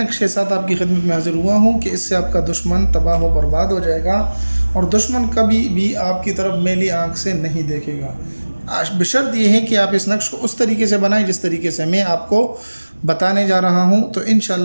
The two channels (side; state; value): both; inverted; correlation -1.00